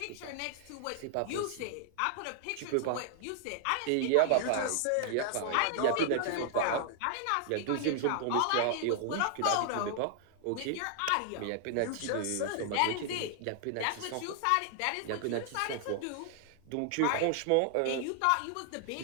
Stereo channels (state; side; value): different; both; correlation 0.00